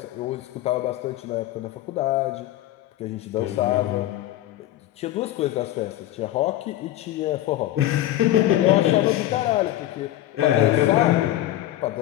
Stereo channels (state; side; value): quieter; right; 14.2 dB